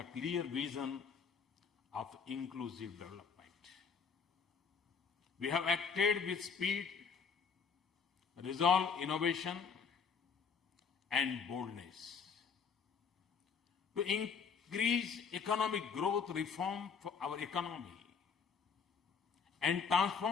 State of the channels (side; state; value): right; quieter; 6.0 dB